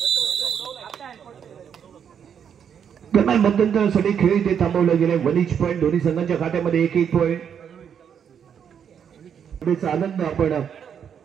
दरम्यान मध्यंतरासाठी खेळ इथे थांबवलं गेले. 1 पॉईंट दोन्ही संघांच्या खात्यामध्ये 1 पॉईंट. आनंद आपण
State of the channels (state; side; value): quieter; left; 8.0 dB